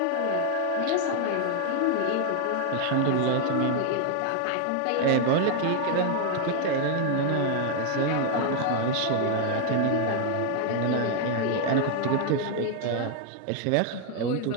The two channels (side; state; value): both; different; correlation 0.00